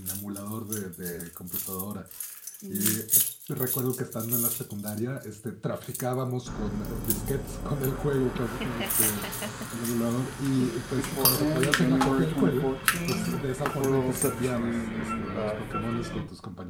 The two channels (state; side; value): identical; both; correlation 1.00